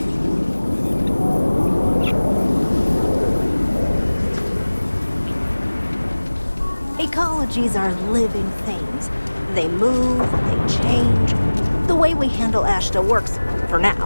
Ecologies are living things. They move, they change. The way we handle Ashta works for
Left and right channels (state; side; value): inverted; both; correlation -1.00